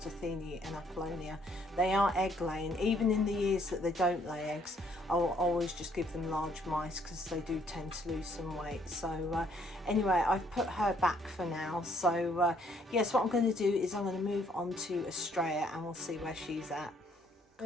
Athene and Apollonia. They are egg laying. Even in the years that they don't lay eggs, I'll always just give them large mice because they do tend to lose some weight. So anyway, I've put her back for now. So yes, what I'm going to do is I'm going to move on to Astraea and we'll see where she's at.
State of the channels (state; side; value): normal; both; correlation 0.66